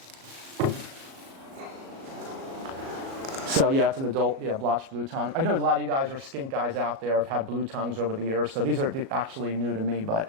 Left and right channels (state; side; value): late; left; 37 ms